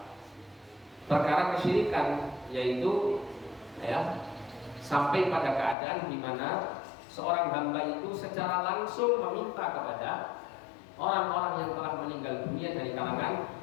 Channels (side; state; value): right; drops out; at 5.8 s